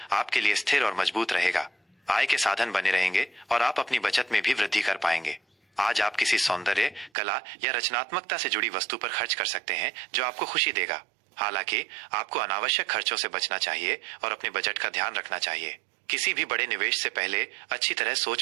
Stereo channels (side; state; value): left; drops out; at 7.1 s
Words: आपके लिए स्थिर और मजबूत रहेगा। आय के साधन बने रहेंगे और आप अपनी बचत में भी वृद्धि कर पाएंगे। आज आप किसी सौंदर्य, कला या रचनात्मकता से जुड़ी वस्तु पर खर्च कर सकते हैं जो आपको खुशी देगा। हालांकि आपको अनावश्यक खर्चों से बचना चाहिए और अपने बजट का ध्यान रखना चाहिए। किसी भी बड़े निवेश से पहले अच्छी तरह